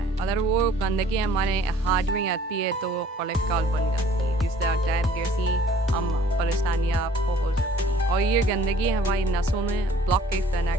है। अगर वो गंदगी हमारे हार्ट में आती है तो वो कोलेस्ट्रॉल बन जाती है, जिससे अटैक जैसी हम परेशानियाँ आपको हो सकती हैं। और ये गंदगी हमारी नसों में ब्लॉकेज पैदा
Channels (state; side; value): normal; both; correlation 0.54